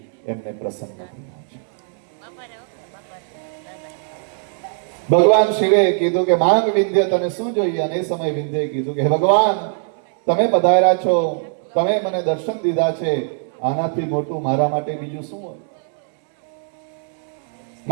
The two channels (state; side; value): silent; left; 63 dB below the other